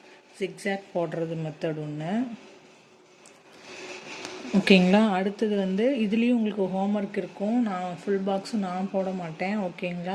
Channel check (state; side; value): identical; both; correlation 1.00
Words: ஜிக்ஸாக் போடுறது மெத்தட் ஒன்று. ஓகேங்களா? அடுத்தது வந்து இதுலேயும் உங்களுக்கு ஹோம்ஒர்க் இருக்கும். நான் ஃபுல் பாக்ஸும் நான் போட மாட்டேன்.